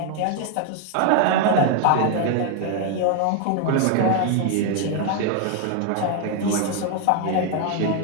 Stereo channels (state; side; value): different; both; correlation 0.01